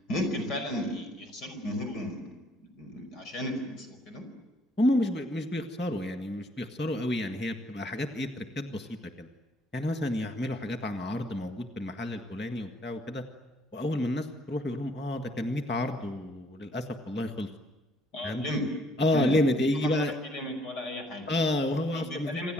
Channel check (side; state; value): both; normal; correlation 0.65